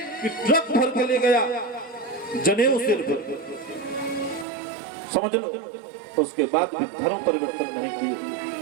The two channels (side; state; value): left; drops out; at 4.5 s